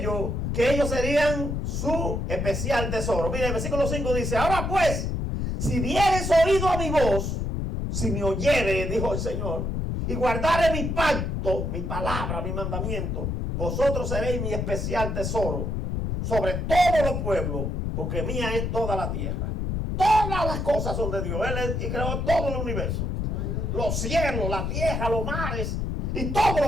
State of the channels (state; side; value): noise; left; rumble, 1 dB below the sound